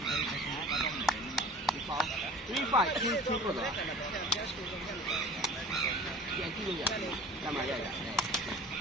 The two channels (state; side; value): normal; both; correlation 0.42